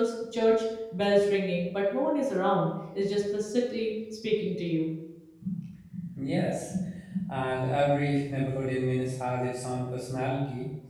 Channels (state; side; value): identical; both; correlation 1.00